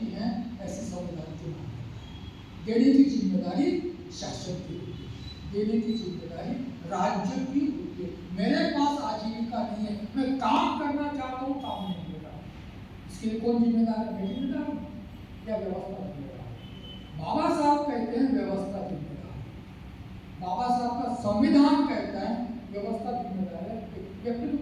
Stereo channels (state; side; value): identical; both; correlation 1.00